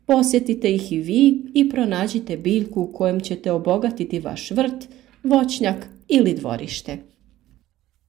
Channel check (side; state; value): left; quieter; 14.8 dB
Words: Posjetite ih i vi i pronađite biljku kojom ćete obogatiti vaš vrt, voćnjak ili dvorište.